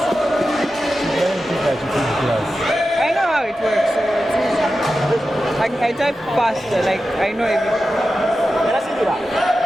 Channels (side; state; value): both; normal; correlation 0.92